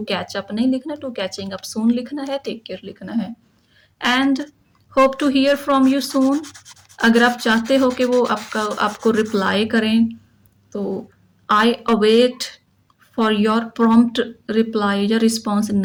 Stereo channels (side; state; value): both; identical; correlation 1.00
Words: कैच अप नहीं लिखना, टू कैचिंग अप सून लिखना है, टेक केयर लिखना है। And hope to hear from you soon, अगर आप चाहते हो कि वो आपको रिप्लाई करें तो I await for your prompt reply या रिस्पॉन्स